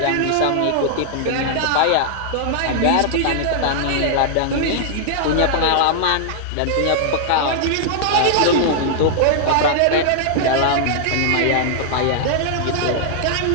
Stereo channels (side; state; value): both; different; correlation -0.01